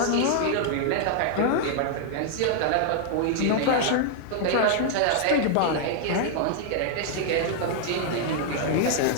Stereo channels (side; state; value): both; different; correlation 0.00